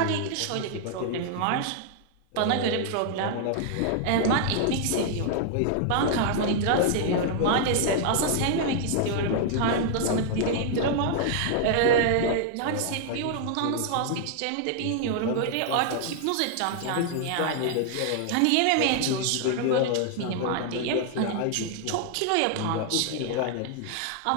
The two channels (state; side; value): different; both; correlation 0.00